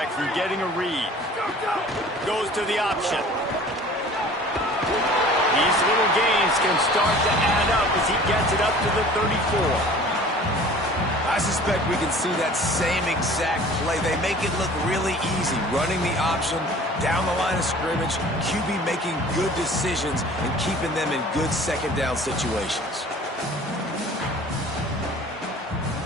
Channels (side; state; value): both; normal; correlation 0.46